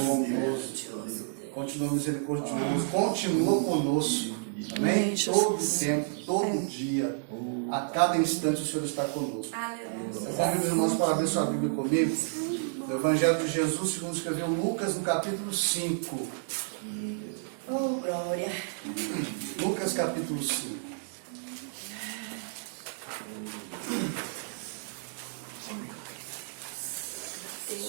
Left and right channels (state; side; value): silent; left; digital silence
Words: bondoso, continua misericordioso, continua conosco. Amém? Todo tempo, todo dia, a cada instante o Senhor está conosco. Eu convido os irmãos para abrir sua Bíblia comigo. No Evangelho de Jesus, segundo escreveu Lucas, no capítulo 5. Oh, glória. Lucas, capítulo 5.